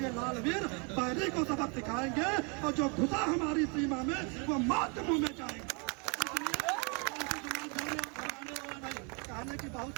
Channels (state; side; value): quieter; left; 34.1 dB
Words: लाल वीर बैरी को सबक सिखाएंगे और जो घुसा हमारी सीमा में वो मौत के मुंह में जाएंगे। कहने की बहुत